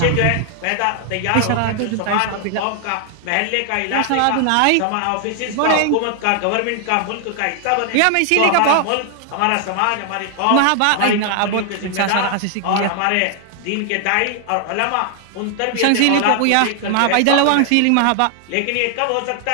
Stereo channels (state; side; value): different; both; correlation 0.00